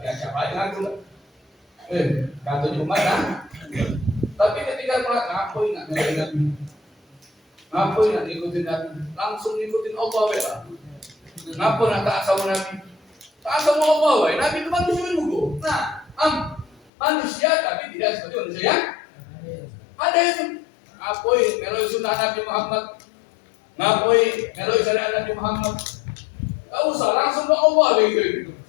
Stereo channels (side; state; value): right; drops out; at 16.8 s